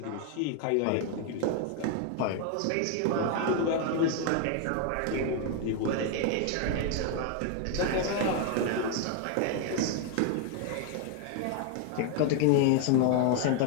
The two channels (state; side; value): different; both; correlation 0.01